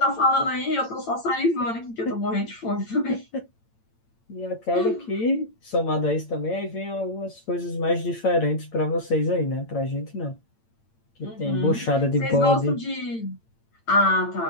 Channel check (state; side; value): late; right; 8.8 ms